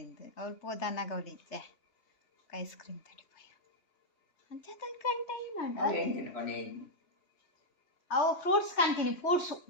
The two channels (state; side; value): late; right; 3.2 ms